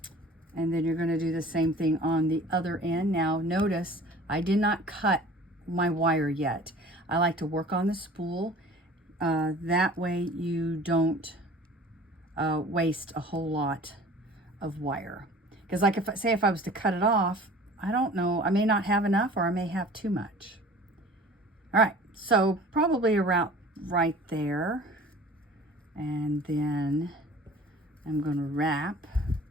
And then you're going to do the same thing on the other end. Now notice I did not cut my wire yet. I like to work on the spool. That way you don't waste a whole lot of wire. Because like if I was to cut it off, I don't know, I may not have enough, or I may have too much. All right, so probably around right there. And then I'm going to wrap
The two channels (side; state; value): both; normal; correlation 0.45